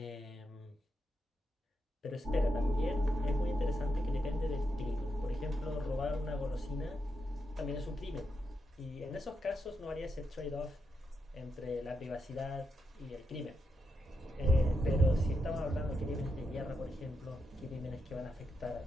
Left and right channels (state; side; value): normal; both; correlation 0.84